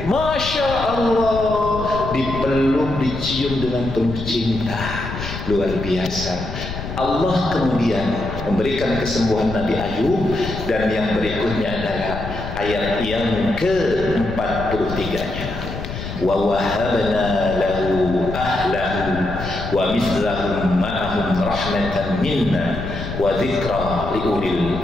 Masya Allah, dipeluk, dicium dengan penuh cinta, luar biasa. Allah kemudian memberikan kesembuhan Nabi Ayub, dan yang berikutnya adalah ayat yang ke-43-nya. Wa wahabna lahu ahlahu wa mithlahum ma'ahum rahmatan minna wa dzikra liulil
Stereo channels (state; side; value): noise; left; rumble, 8 dB below the sound